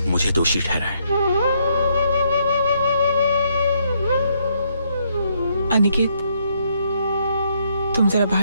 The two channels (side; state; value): both; inverted; correlation -0.72